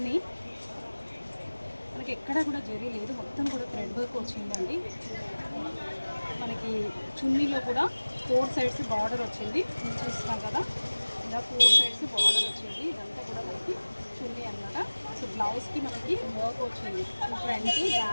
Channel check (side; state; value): both; inverted; correlation -1.00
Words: మనకి ఎక్కడ కూడా జరీ లేదు, మొత్తం కూడా థ్రెడ్ వర్క్ వచ్చిందండి. మనకి చున్నీలో కూడా 4 సైడ్స్ బార్డర్ వచ్చింది, చూస్తున్నాం కదా, ఇలా 4 సైడ్స్ బార్డర్ వచ్చింది. ఇదంతా కూడా మనకి చున్నీ అనమాట. సో బ్లౌజ్కి మనకి వర్క్ వచ్చింది, ఫ్రంట్